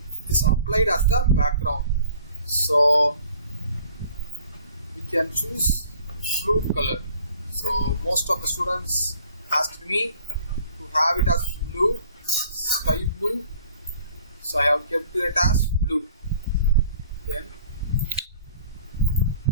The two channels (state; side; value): inverted; both; correlation -0.53